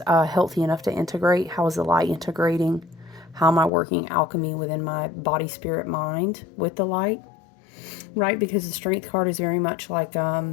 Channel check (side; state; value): right; drops out; at 3.7 s